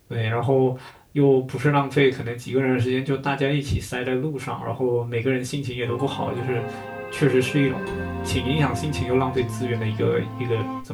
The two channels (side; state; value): both; identical; correlation 1.00